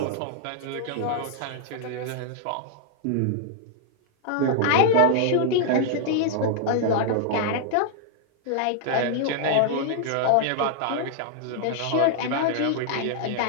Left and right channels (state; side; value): different; both; correlation -0.01